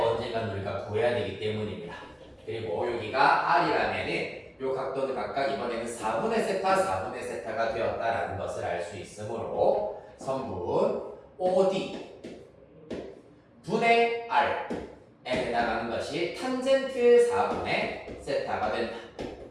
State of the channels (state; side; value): identical; both; correlation 1.00